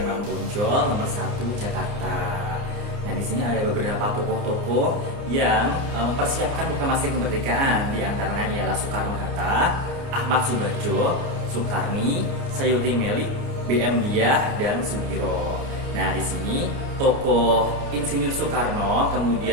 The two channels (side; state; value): left; late; 29 ms